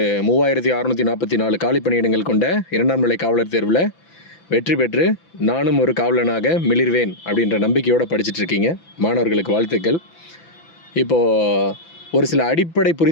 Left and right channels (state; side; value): late; right; 6.0 ms